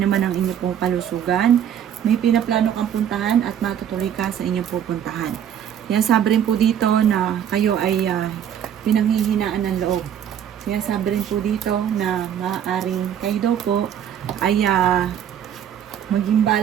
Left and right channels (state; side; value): quieter; left; 9.4 dB